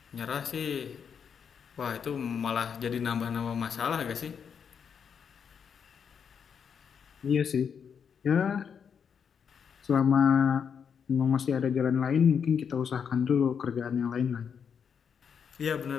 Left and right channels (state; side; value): quieter; right; 7.1 dB